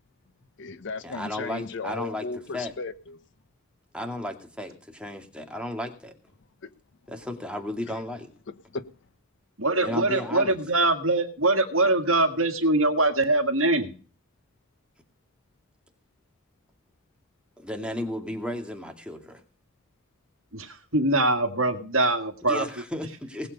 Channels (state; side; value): normal; both; correlation -0.16